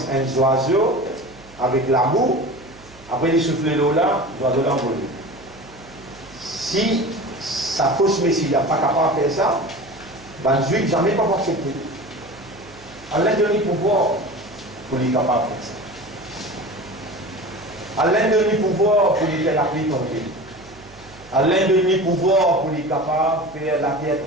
un oiseau avec l'amour. Après, il souffle l'eau là, l'oiseau l'envole. Si sa fausse Messie n'est pas capable de faire ça, ben, le juif jamais pas accepter. Allah donne le pouvoir pour lui capable de faire ça. Allah donne le pouvoir pour lui faire la pluie tomber. Allah donne le pouvoir pour lui capable de faire la terre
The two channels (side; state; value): right; noise; hum, 23 dB below the sound